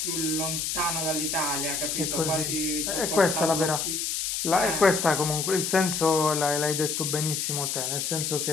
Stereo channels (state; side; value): noise; left; hiss, 1 dB below the sound